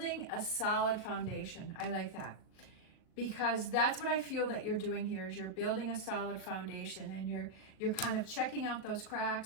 a solid foundation. I like that. because that's what I feel that you're doing here, is you're building a solid foundation, and you're kind of checking out those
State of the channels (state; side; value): late; right; 38 ms